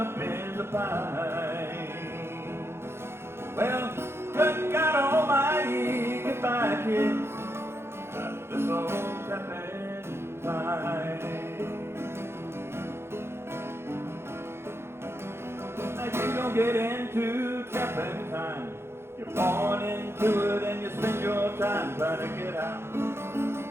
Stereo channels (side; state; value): left; late; 0.12 ms